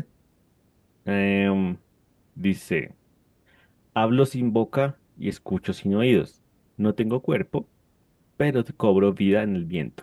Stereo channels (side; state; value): both; identical; correlation 1.00